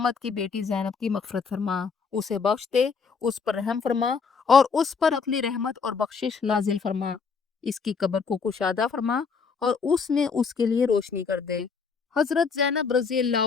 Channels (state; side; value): quieter; right; 5.4 dB